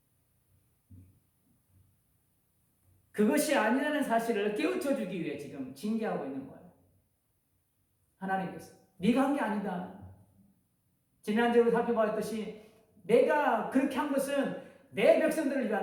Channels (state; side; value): identical; both; correlation 1.00